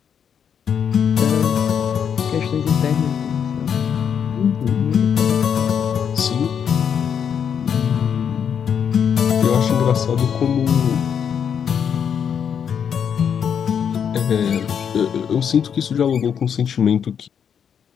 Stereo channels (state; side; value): quieter; right; 7.8 dB